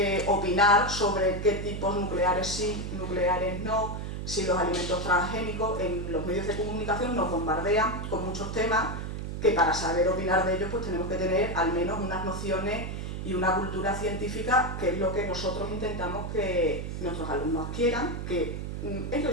opinar sobre qué tipos nucleares sí, nucleares no, si los alimentos transgénicos. En los medios de comunicación nos bombardean con muchos temas que para saber opinar de ellos pues tenemos que tener al menos unas nociones y una cultura científica, que es lo que nosotros intentamos que nuestros alumnos adquieran, que ellos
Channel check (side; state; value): right; noise; hum, 5 dB below the sound